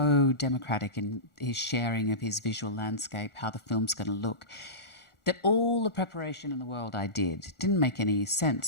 democratic in his sharing of his visual landscape, how the film's going to look, that all the preparation in the world I didn't make any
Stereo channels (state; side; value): late; right; 1.4 ms